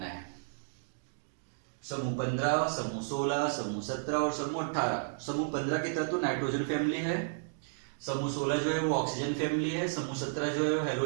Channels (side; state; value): left; silent; digital silence